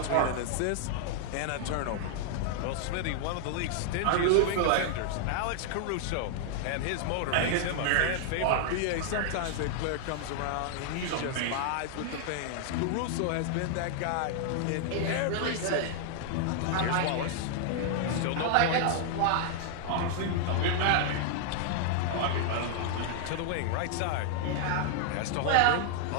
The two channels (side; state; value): both; different; correlation 0.00